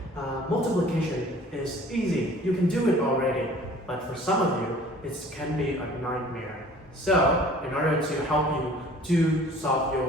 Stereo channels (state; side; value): normal; both; correlation 0.50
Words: multiplication is easy, you can do it already. But for some of you, it can be a nightmare. So, in order to help you to solve